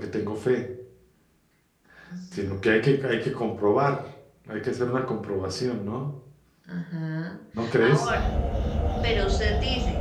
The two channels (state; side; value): identical; both; correlation 1.00